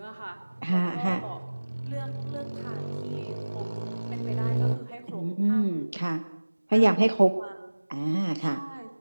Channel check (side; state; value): both; inverted; correlation -1.00